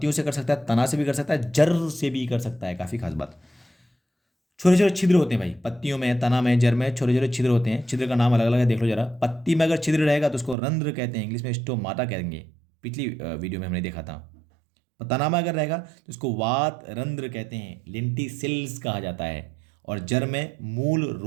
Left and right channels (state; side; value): drops out; left; at 10.6 s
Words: से कर सकता है, तना से भी कर सकता है, जड़ से भी कर सकता है। काफ़ी खास बात। छोटे छोटे छिद्र होते हैं भाई पत्तियों में, तना में, जड़ में छोटे छोटे छिद्र होते हैं। छिद्र का नाम अलग अलग है, देख लो जरा। पत्ती में अगर छिद्र रहेगा तो उसको रंध्र कहते हैं, इंग्लिश में स्टोमाटा कहेंगे। पिछली वीडियो में हमने देखा था। तना में अगर रहेगा तो उसको वात रंध्र कहते हैं, लेंटिसिल्स कहा जाता है। और जड़ में मूल